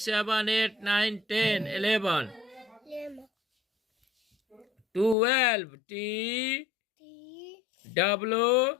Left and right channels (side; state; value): right; drops out; at 5.2 s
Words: 7 8 9 10 11. 12. TWELVA.